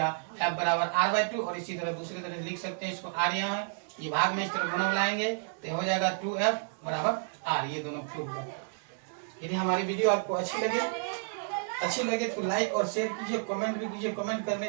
एफ बराबर आर बाय 2। और इसी तरह दूसरी तरह लिख सकते हैं इसको, आर यहाँ है, ये भाग में इस तरह गुना बुलाएंगे तो हो जाएगा 2f बराबर आर, ये दोनों प्रूफ है। यदि हमारी वीडियो आपको अच्छी लगे तो लाइक और शेयर कीजिए, कमेंट भी कीजिए, कमेंट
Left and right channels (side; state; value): left; silent; digital silence